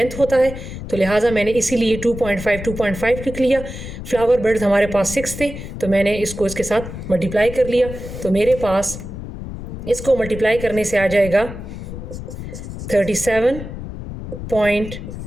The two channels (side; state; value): left; noise; rumble, 9 dB below the sound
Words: होता है। तो लिहाजा मैंने इसीलिए 2.5 लिख लिया। फ्लावर बेड्स हमारे पास 6 थे तो मैंने इसको इसके साथ मल्टीप्लाई कर लिया। तो मेरे पास इसको मल्टीप्लाई करने से आ जाएगा